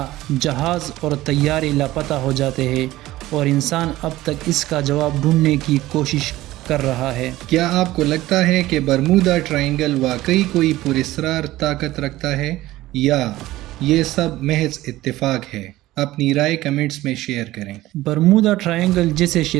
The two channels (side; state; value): left; quieter; 16.7 dB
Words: جہاز اور طیارے لاپتہ ہو جاتے ہیں اور انسان اب تک اس کا جواب ڈھونڈنے کی کوشش کر رہا ہے۔ کیا آپ کو لگتا ہے کہ برمودا ٹرائنگل واقعی کوئی پراسرار طاقت رکھتا ہے یا یہ سب محض اتفاق ہے؟ اپنی رائے کمنٹس میں شیئر کریں۔ برمودا ٹرائنگل، جسے